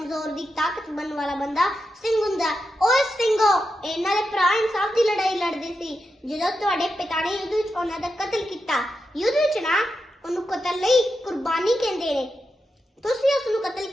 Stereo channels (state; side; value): normal; both; correlation 0.88